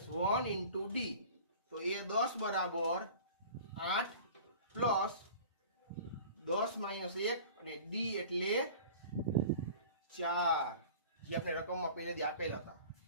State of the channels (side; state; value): both; inverted; correlation -0.42